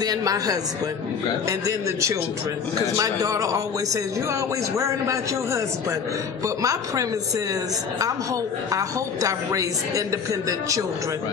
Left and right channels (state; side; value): quieter; right; 6.3 dB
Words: my husband, and then the children. Because my daughter always says, "You're always worrying about your husband." But my premise is, I hoped I've raised independent children.